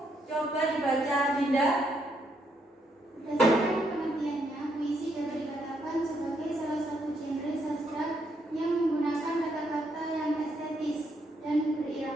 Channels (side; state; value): both; normal; correlation 0.75